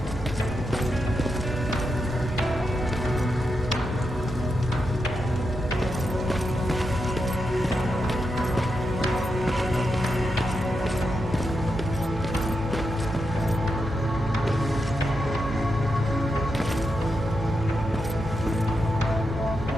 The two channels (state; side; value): normal; both; correlation 0.85